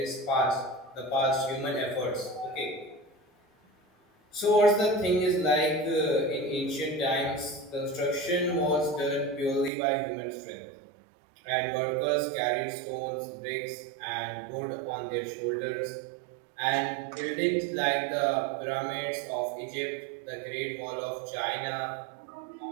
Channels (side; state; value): left; drops out; at 9.7 s